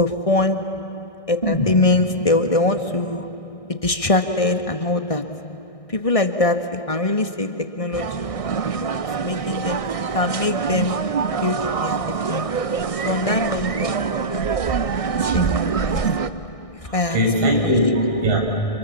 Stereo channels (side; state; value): right; late; 1.6 ms